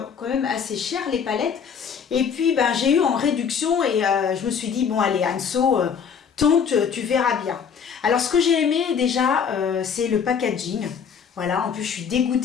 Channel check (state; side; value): quieter; right; 7.0 dB